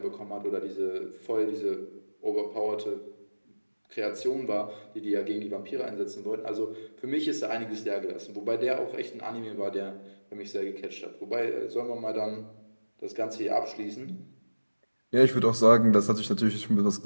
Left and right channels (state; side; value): inverted; both; correlation -1.00